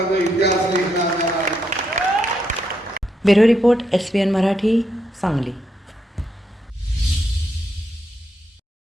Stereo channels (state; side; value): normal; both; correlation 0.79